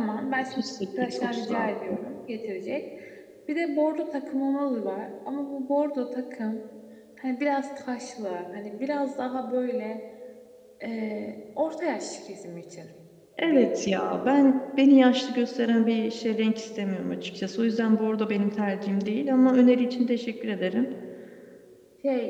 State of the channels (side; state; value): both; identical; correlation 1.00